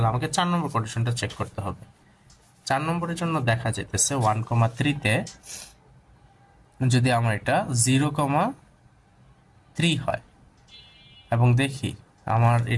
আমাকে 4 নম্বর কন্ডিশনটা চেক করতে হবে। 4 নম্বরের জন্য দেখা যেতেছে 1,3 তে যদি আমার এটা 0,3 হয় এবং দেখি আমার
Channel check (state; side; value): identical; both; correlation 1.00